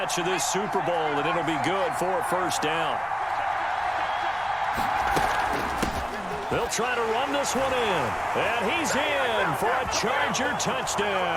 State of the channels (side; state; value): both; identical; correlation 1.00